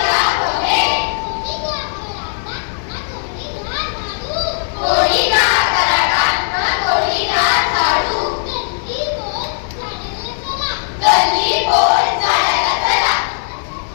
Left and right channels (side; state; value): right; silent; 68 dB below the other